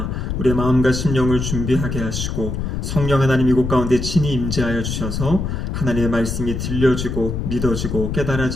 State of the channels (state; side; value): noise; left; rumble, 3 dB below the sound